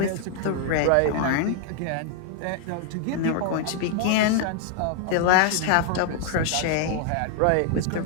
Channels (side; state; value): both; different; correlation 0.00